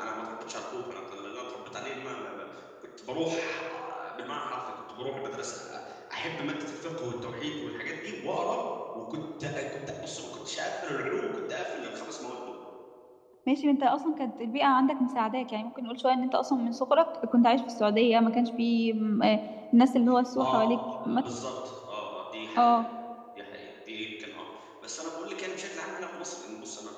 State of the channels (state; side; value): identical; both; correlation 1.00